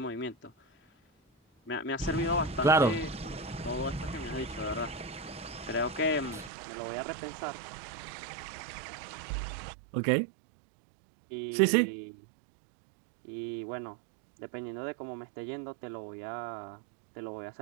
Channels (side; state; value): left; drops out; at 6.5 s